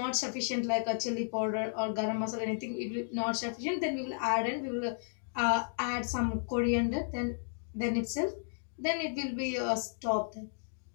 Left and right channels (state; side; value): silent; right; digital silence